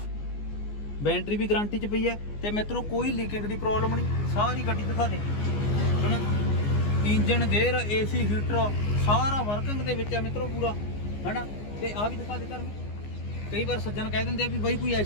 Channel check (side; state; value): right; late; 14 ms